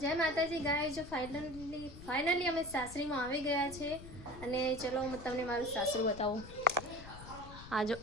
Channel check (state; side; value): noise; left; rumble, 15 dB below the sound